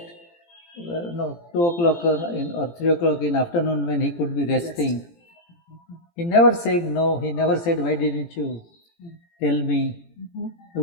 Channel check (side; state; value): right; late; 18 ms